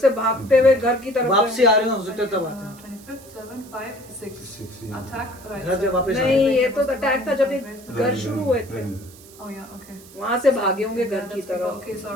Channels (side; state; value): right; noise; hiss, 22 dB below the sound